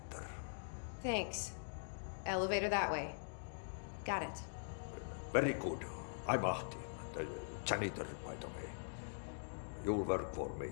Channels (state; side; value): silent; right; digital silence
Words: Thanks. Elevator that way. Got it. Very good. I'm Ahti, the janitor, by the way. You'll work for me.